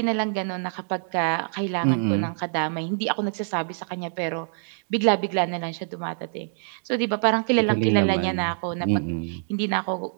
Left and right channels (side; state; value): left; silent; 61 dB below the other